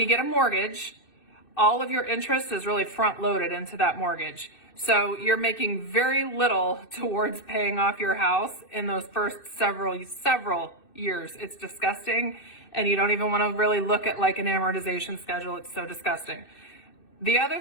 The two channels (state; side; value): late; right; 2.6 ms